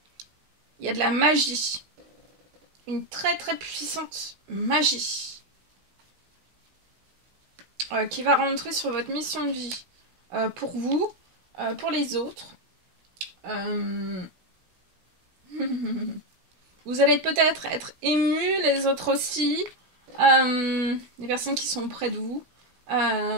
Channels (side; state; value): left; late; 16 ms